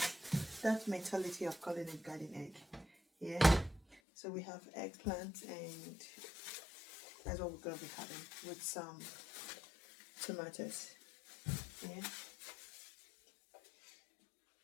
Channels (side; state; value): right; drops out; at 4.0 s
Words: mentality of calling it garden egg. Yeah, so we have eggplant and that's what we're going to be having with some tomatoes. Yeah.